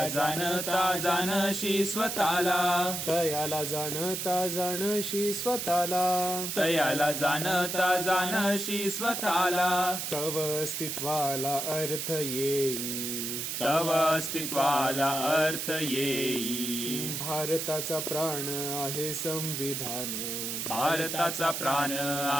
जाणता जाणशी स्वतःला. तयाला जाणता जाणशी स्वतःला. तयाला जाणता जाणशी स्वतःला. तव अस्तित्वाला अर्थ येई. तव अस्तित्वाला अर्थ येई. भारताचा प्राण आहे संविधान. भारताचा प्राण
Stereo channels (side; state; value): right; noise; hiss, 3 dB below the sound